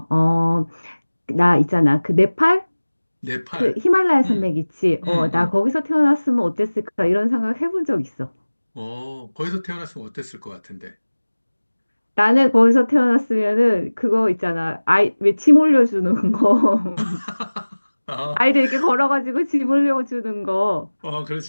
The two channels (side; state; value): both; inverted; correlation -1.00